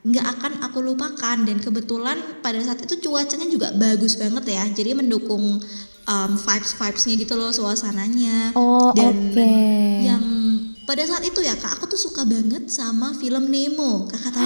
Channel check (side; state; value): both; inverted; correlation -1.00